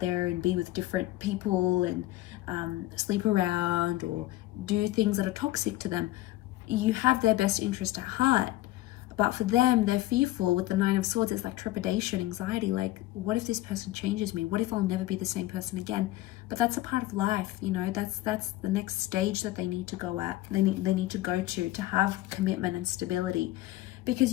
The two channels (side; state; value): right; quieter; 16.5 dB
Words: there and be with different people and sleep around or do things that are toxic to them. You have their best interest at heart. But for them, they're fearful. With the Nine of Swords, it's like trepidation, anxiety. Like, what if this person changes me? What if I'll never be the same person again? But that's a part of life, you know. That's the next stage that they need to go at. They need to go to have commitment and stability.